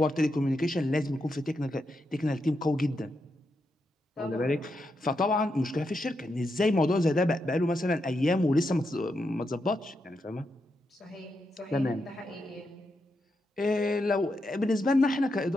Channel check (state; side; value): normal; both; correlation 0.84